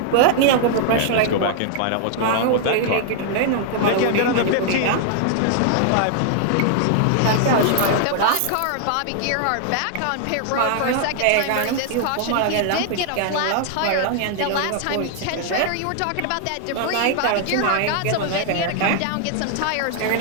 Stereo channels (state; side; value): different; both; correlation -0.01